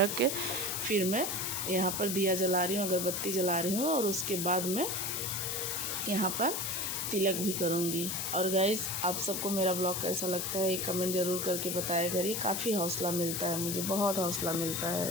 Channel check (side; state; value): left; noise; hiss, 2 dB below the sound